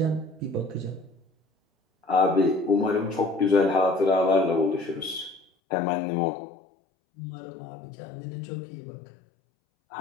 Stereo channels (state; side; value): drops out; right; at 5.5 s